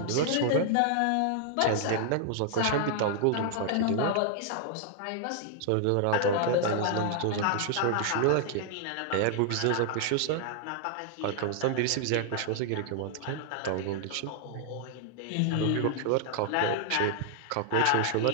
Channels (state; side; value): different; both; correlation 0.00